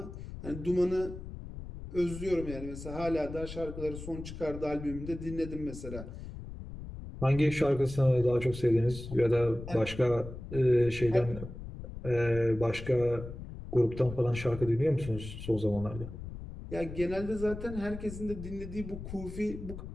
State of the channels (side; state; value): left; noise; rumble, 10 dB below the sound